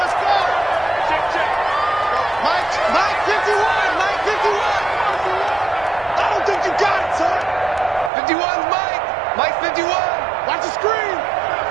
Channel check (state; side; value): drops out; left; at 8.1 s